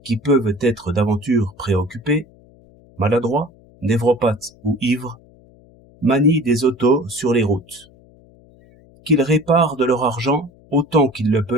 qui peuvent être d'aventure préoccupés, maladroits, névropathes ou ivres, manient des autos sur les routes. Qu'ils réparent de leur argent autant qu'ils le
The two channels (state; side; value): noise; left; hum, 27 dB below the sound